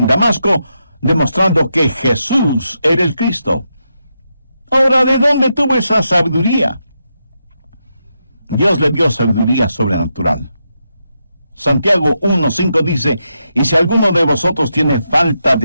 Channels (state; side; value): inverted; both; correlation -0.84